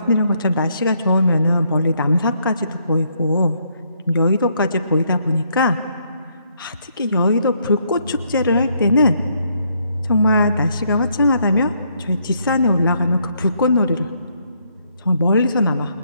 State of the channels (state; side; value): inverted; both; correlation -0.72